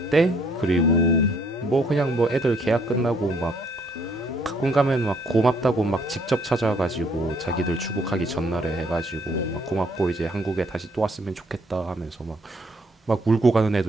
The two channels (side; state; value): both; normal; correlation 0.66